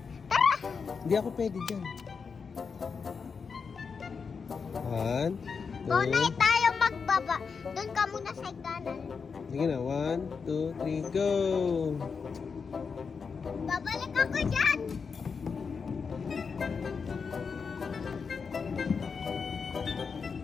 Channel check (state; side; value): quieter; right; 5.5 dB